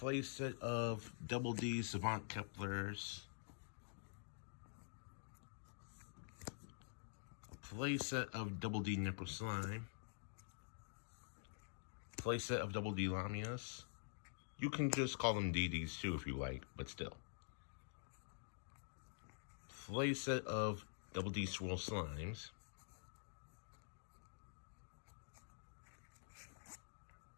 set of Double D Savant Keplers. Playset of Double D Nipple Slime. Playset of Double D Lamias. You can just call them DDs too if you like, but still. Playset of Double D Swirl Slimes.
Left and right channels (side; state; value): right; silent; digital silence